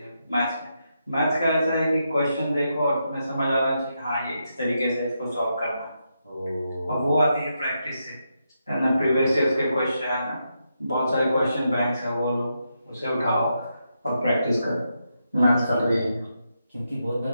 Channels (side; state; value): both; inverted; correlation -0.83